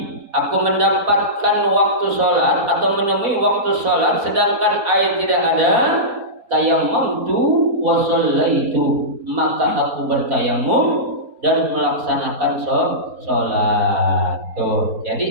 aku mendapatkan waktu salat atau menemui waktu salat sedangkan air tidak ada, tayammamtu wa shallaitu, maka aku bertayammum dan melaksanakan salat. Tuh.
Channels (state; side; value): late; left; 4.2 ms